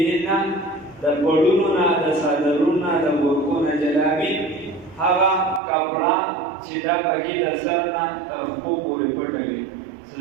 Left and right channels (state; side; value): drops out; left; at 5.6 s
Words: د پړونو نه د څادرونو نه د ګورکو نه جلابي هغه کپړه چې دا پکې د سر نه تر پښو پورې پټه وي. څه